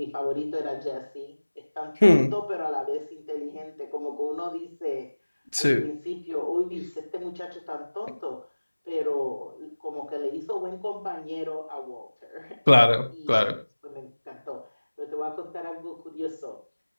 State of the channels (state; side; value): inverted; both; correlation -1.00